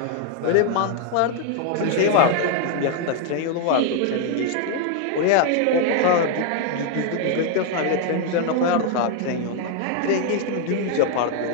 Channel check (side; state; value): both; different; correlation 0.00